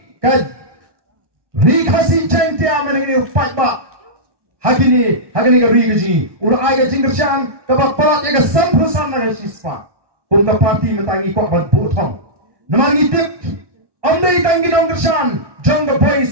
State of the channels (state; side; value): late; left; 1.1 ms